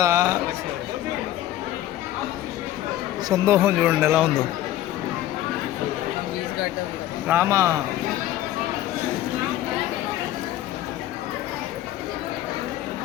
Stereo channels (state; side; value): quieter; right; 13.6 dB